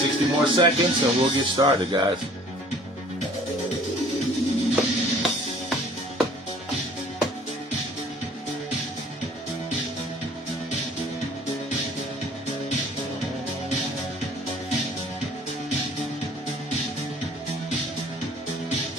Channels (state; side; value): normal; both; correlation 0.53